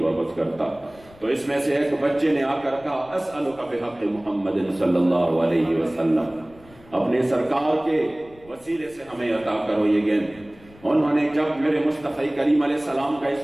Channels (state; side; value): noise; left; rumble, 25 dB below the sound